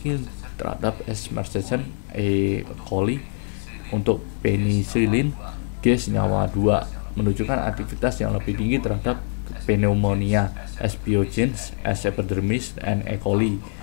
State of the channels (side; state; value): right; silent; 58 dB below the other